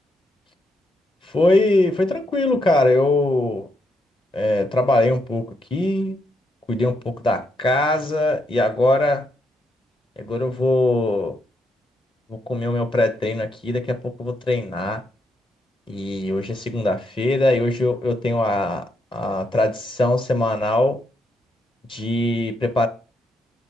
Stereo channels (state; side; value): normal; both; correlation 0.79